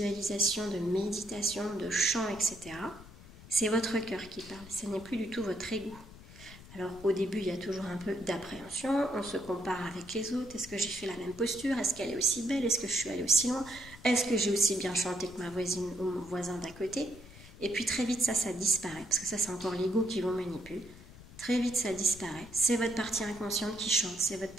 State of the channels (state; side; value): noise; left; rumble, 18 dB below the sound